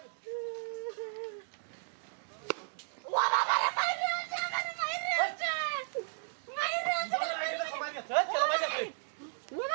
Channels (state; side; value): silent; left; digital silence